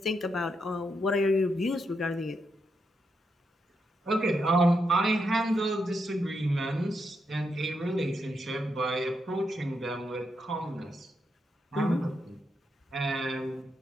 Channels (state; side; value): normal; both; correlation 0.82